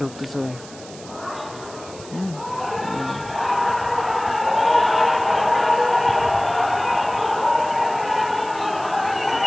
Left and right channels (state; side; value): noise; right; hiss, 18 dB below the sound